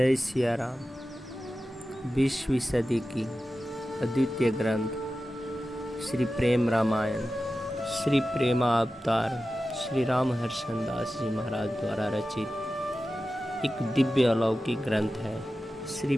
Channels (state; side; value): normal; both; correlation 0.94